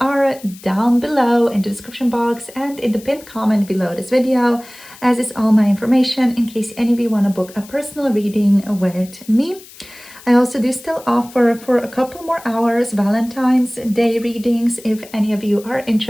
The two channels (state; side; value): noise; left; hiss, 20 dB below the sound